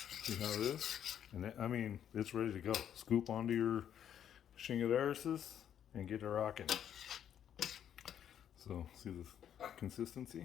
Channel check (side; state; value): right; quieter; 9.6 dB